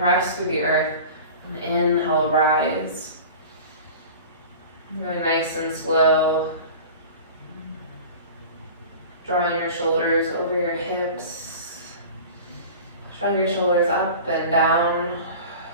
through the earth, and inhale, rise. Going nice and slow. Drawing your shoulders over your hips. Drawing your shoulders up and down.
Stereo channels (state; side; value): inverted; both; correlation -0.37